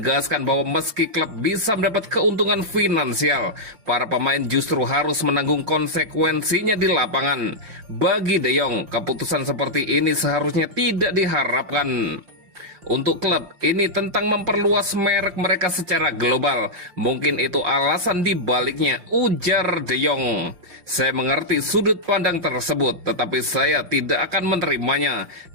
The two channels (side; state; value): left; late; 5.6 ms